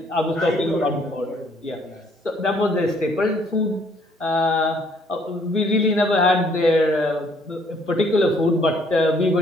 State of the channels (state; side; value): normal; both; correlation 0.64